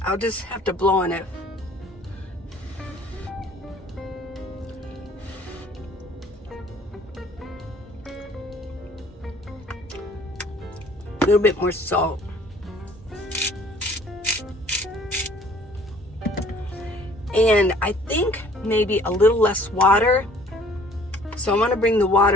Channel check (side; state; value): both; normal; correlation 0.55